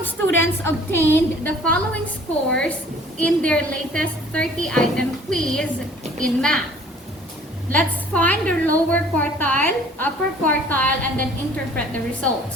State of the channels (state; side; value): normal; both; correlation 0.52